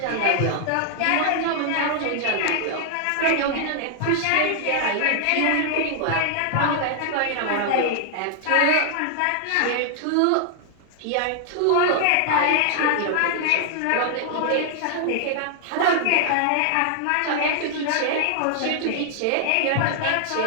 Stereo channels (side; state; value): both; different; correlation 0.00